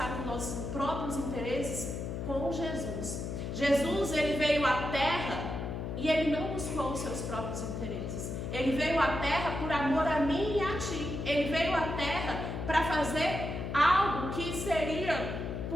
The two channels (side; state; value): left; noise; hum, 5 dB below the sound